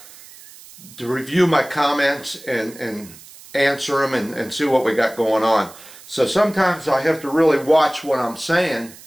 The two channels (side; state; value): right; noise; hiss, 20 dB below the sound